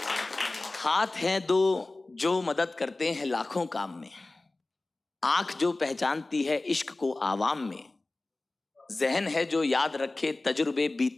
हाथ हैं दो जो मदद करते हैं लाखों काम में, आंख जो पहचानती है इश्क को आवाम में, जहन है जो याद रखे तजुर्बे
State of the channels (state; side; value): quieter; right; 3.1 dB